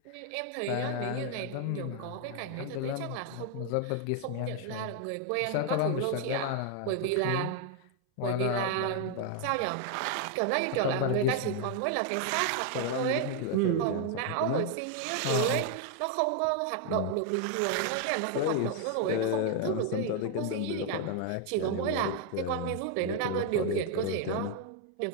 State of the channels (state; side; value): different; both; correlation 0.01